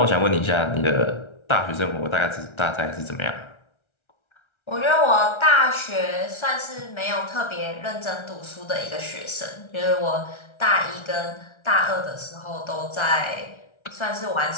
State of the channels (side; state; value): right; late; 1.3 ms